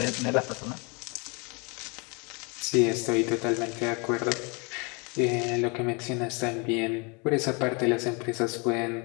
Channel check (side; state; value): right; quieter; 31.4 dB